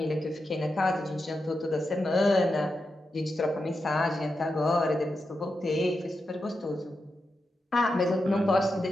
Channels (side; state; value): both; normal; correlation 0.88